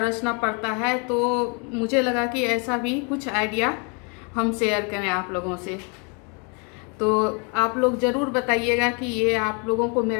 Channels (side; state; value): right; quieter; 35.2 dB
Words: पड़ता है। तो मुझे लगा कि ऐसा भी कुछ आइडिया हम शेयर करें आप लोगों से। तो आप लोग ज़रूर बताइएगा कि ये आप लोगों को